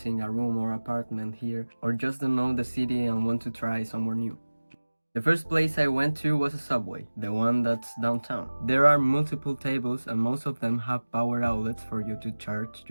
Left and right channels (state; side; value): inverted; both; correlation -1.00